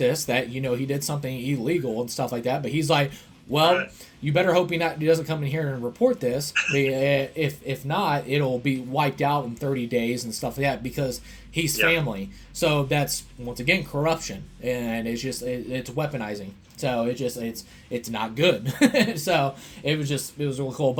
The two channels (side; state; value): both; identical; correlation 1.00